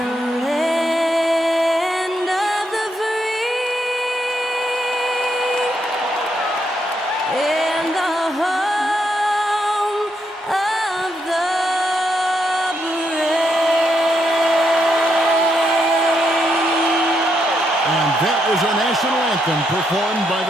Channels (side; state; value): both; normal; correlation 0.79